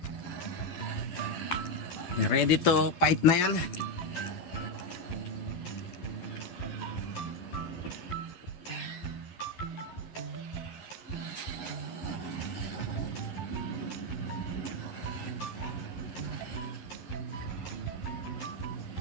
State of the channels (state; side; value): late; right; 11 ms